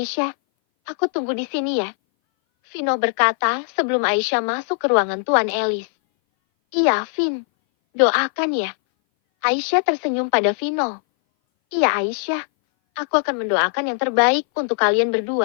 aku tunggu di sini ya. Vino berkata sebelum Aisyah masuk ke ruangan Tuan Ellis. Iya, Vin. Doakan ya. Aisyah tersenyum pada Vino. Iya, Aisyah. Aku akan mendoakan yang terbaik untuk kalian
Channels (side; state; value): right; silent; 60 dB below the other